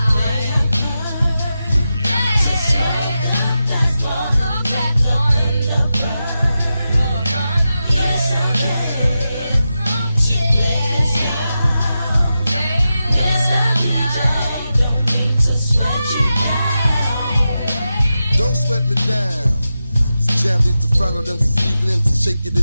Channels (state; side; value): inverted; both; correlation -0.90